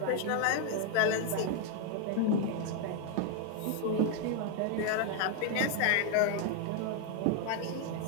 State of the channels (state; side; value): different; both; correlation 0.00